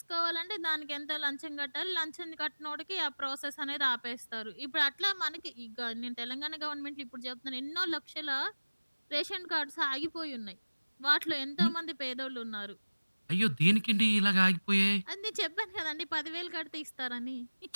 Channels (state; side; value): inverted; both; correlation -1.00